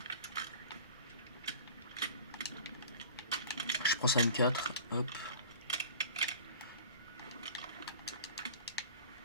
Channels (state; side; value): inverted; both; correlation -0.42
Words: Je prends ça M4. Hop.